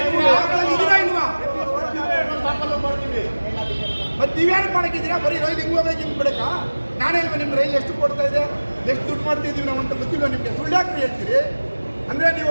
ಇದೀರಾ ಇಲ್ವಾ? ಮತ್ತೆ ನೀವ್ಯಾರು ಮಾಡಕ್ಕಿದ್ದೀರಾ? ಬರೀ ರೈಲ್ ಹಿಂಗೆ ಹೋಗ್ಬೇಕು ಹಿಂಗೆ ಬಿಡಕ್ಕ? ನಾನೇ ಇಲ್ವಾ ನಿಮ್ಮ ರೈಲ್ ಎಷ್ಟು ಕೊಡ್ತಾ ಇದೆ, ಎಷ್ಟು ದುಡ್ಡು ಮಾಡ್ತಿದ್ದೀವಿ ನಾವು ಅಂತ ಗೊತ್ತಿಲ್ಲ ನಿಮಗೆ. ಸುಳ್ಳಾಕ್ರಿ ಹೇಳ್ತೀರಿ ಅಂದರೆ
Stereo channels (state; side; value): inverted; both; correlation -1.00